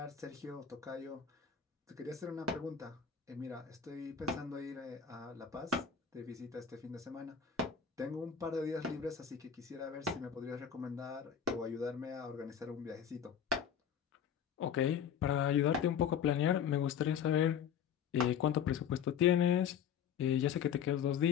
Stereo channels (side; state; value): right; quieter; 8.0 dB